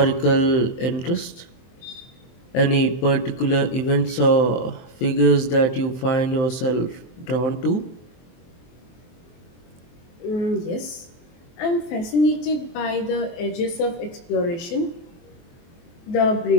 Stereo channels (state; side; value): late; right; 23 ms